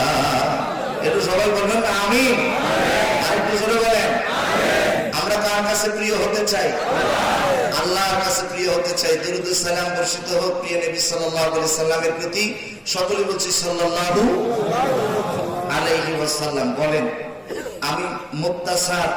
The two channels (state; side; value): identical; both; correlation 1.00